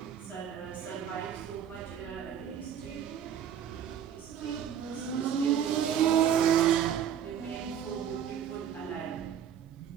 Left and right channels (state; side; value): quieter; left; 9.0 dB